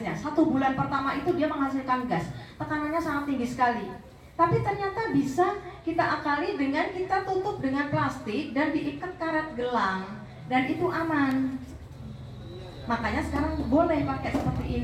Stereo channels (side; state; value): both; identical; correlation 1.00